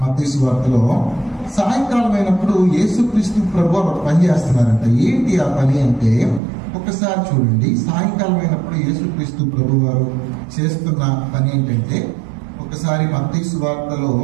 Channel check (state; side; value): drops out; left; at 6.4 s